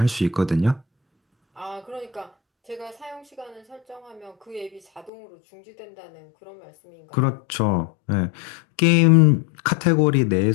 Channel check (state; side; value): drops out; right; at 5.1 s